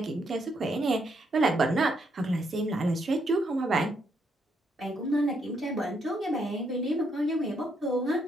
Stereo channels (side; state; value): both; normal; correlation 0.75